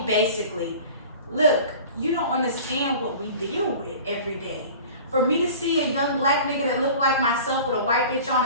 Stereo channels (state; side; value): inverted; both; correlation -0.40